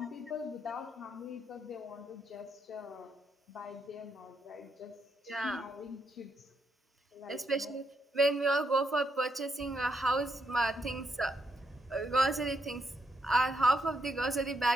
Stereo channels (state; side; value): normal; both; correlation 0.78